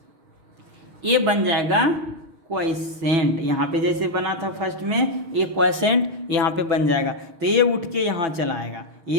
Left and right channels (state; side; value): late; left; 6.3 ms